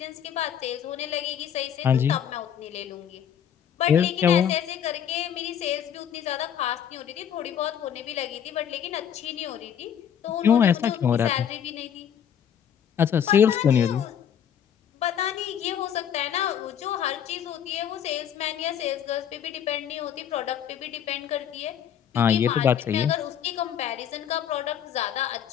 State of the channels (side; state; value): right; quieter; 8.8 dB